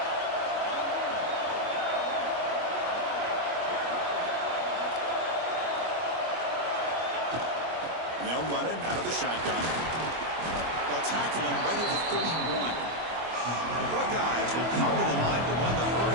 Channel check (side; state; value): left; late; 25 ms